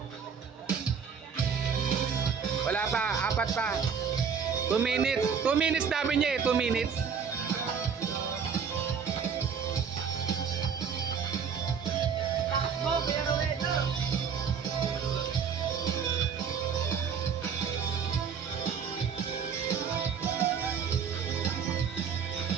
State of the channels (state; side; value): quieter; left; 6.6 dB